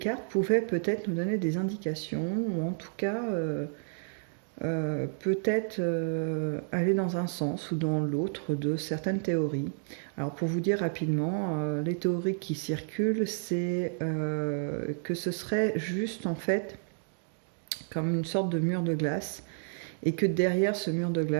pouvaient peut-être nous donner des indications, ou en tout cas peut-être aller dans un sens ou dans l'autre de certaines théories. Alors pour vous dire rapidement, les théories qui circulent, c'est que ce serait juste en fait comme une sorte de mur de glace et que derrière ce mur de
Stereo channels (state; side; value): silent; left; digital silence